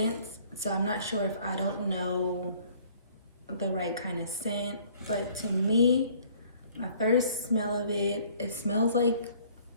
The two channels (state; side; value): inverted; both; correlation -0.57